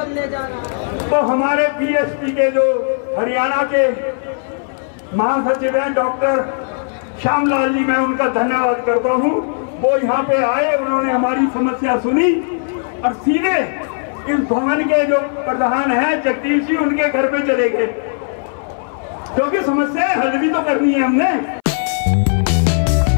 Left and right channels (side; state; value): right; silent; 64 dB below the other